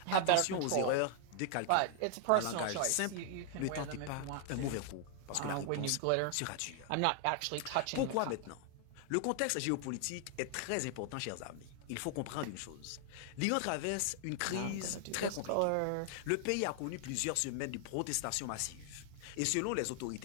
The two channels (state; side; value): different; both; correlation 0.00